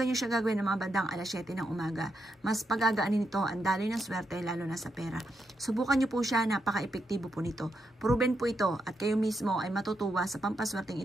nyo siya gagawin ng mga bandang alas 7 ng umaga. Mas pagagaanin nito ang daloy ng swerte lalo na sa pera. Subukan nyo po siya, napaka-epektibo po nito. Proven po ito at kayo mismo ay matutuwa sa pampaswerteng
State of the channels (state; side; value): normal; both; correlation 0.82